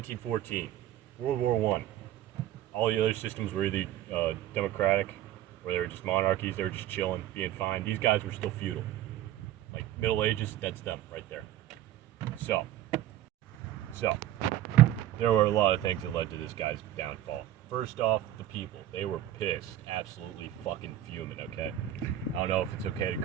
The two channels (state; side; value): quieter; left; 12.7 dB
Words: World War One. All the other systems were either democratic, or they were just monarchies, they were just chilling, being fine. These guys were still feudal. Like, Middle Ages, that's them right there. So, there were a lot of things that led to this guy's downfall. First off, the people. They were pissed. Absolutely fucking fuming, okay? I don't know if it's okay to